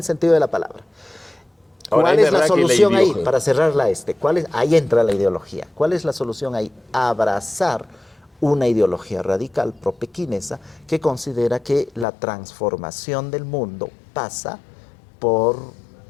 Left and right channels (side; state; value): right; drops out; at 12.1 s